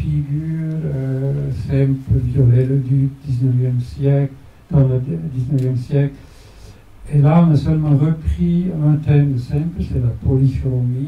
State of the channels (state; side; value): identical; both; correlation 1.00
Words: Semper, Viollet-le-Duc, 19e siècle, dans le 19e siècle. Et là, on a seulement repris un thème de Semper, c'est la